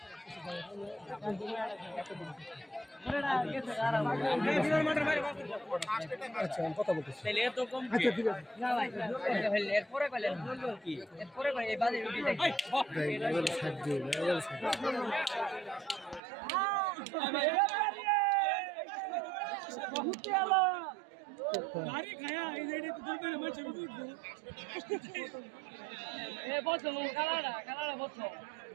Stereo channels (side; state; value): left; drops out; at 16.2 s